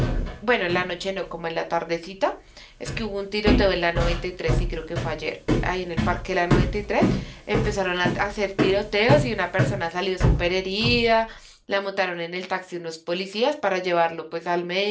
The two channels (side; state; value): both; identical; correlation 1.00